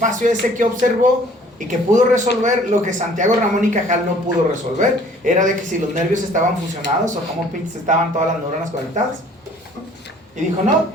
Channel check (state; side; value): normal; both; correlation 0.54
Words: ese que observó y que pudo resolver lo que Santiago Ramón y Cajal no pudo resolver. Era de que si los nervios estaban fusionados o cómo pinches estaban todas las neuronas conectadas. Y dijo, no,